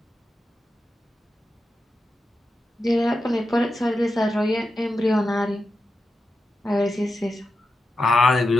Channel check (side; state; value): both; normal; correlation 0.90